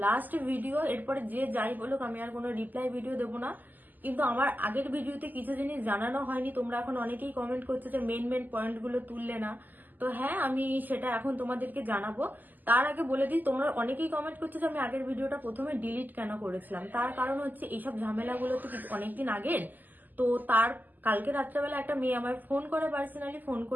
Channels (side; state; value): left; late; 0.085 ms